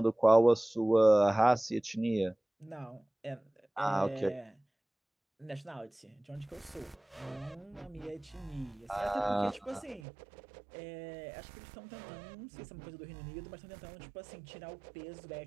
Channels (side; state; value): left; drops out; at 10.0 s